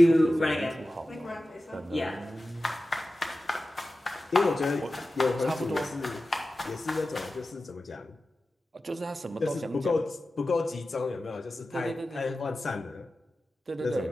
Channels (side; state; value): both; normal; correlation 0.94